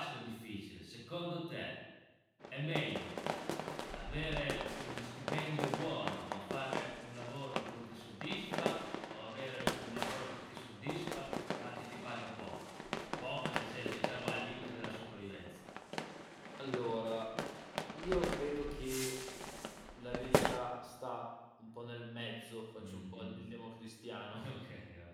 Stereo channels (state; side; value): identical; both; correlation 1.00